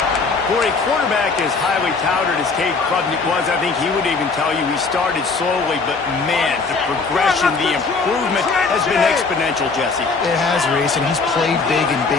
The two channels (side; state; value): right; quieter; 4.4 dB